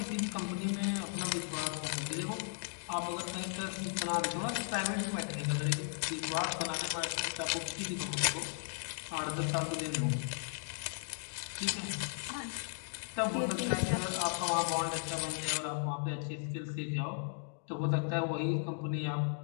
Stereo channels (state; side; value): silent; right; digital silence